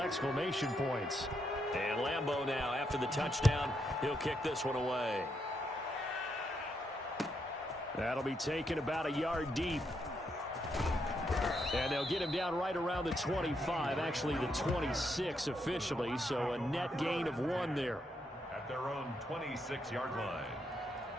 points. And Lambo now, after the touchdown, he'll kick this one away. That'll be taken about a yard deep. And they'll get him down right around the 25, actually the 26 officially, so a net gain of 1 there. At their own 26-yard line.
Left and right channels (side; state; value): both; normal; correlation 0.79